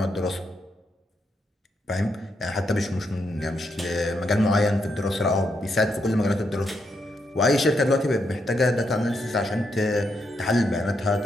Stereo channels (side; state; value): both; normal; correlation 0.80